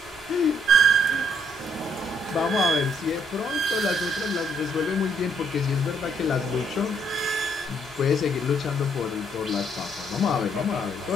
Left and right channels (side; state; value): both; normal; correlation 0.69